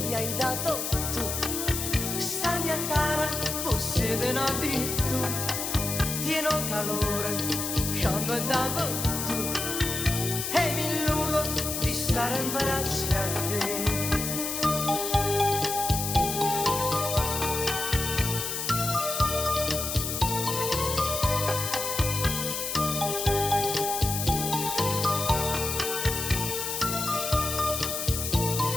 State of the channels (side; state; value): left; noise; hiss, 3 dB below the sound